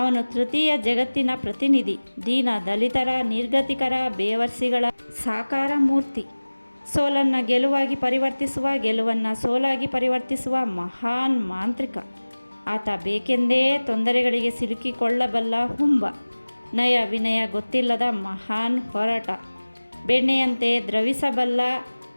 ತೃತೀಯ ಜಗತ್ತಿನ ಪ್ರತಿನಿಧಿ, ದೀನ ದಲಿತರ, ನಿರ್ಗತಿಕರ, ಬೇವರ್ಸಿಗಳ ಸಾಕಾರ ಮೂರ್ತಿ. ಸೋಲನ್ನು ಗೆಲುವಾಗಿ ಪರಿವರ್ತಿಸುವ, ಗೆಲುವನ್ನು ಸೋಲಾಗಿ ಪರಿವರ್ತಿಸುವ ಮಹಾನ್ ಮಾಂತ್ರಿಕ. ಆತ ಬೇಕೆಂದೇ ತೊಂದರೆಗಳಿಗೆ ಸಿಲುಕಿಕೊಳ್ಳಬಲ್ಲ ಹುಂಬ. ನಯ ವಿನಯ ಗೊತ್ತಿಲ್ಲದ ಮಹಾನ್ ಹೊರಟ. ಬೆಣ್ಣೆಯಂತೆ ದ್ರವಿಸಬಲ್ಲ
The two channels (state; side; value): inverted; both; correlation -1.00